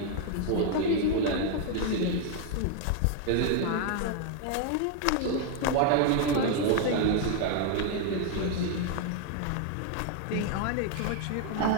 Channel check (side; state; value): both; different; correlation 0.00